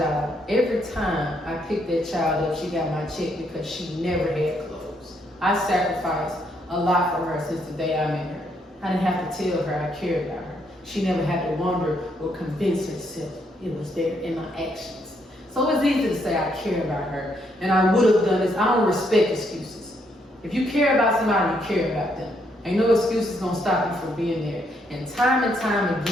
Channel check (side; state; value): both; normal; correlation 0.74